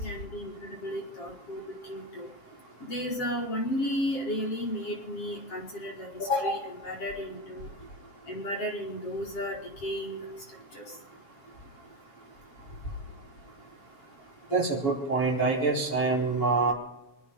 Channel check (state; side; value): late; right; 7.5 ms